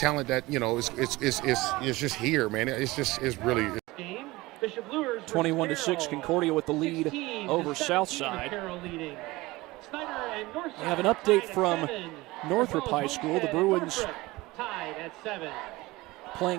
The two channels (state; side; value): quieter; left; 20.4 dB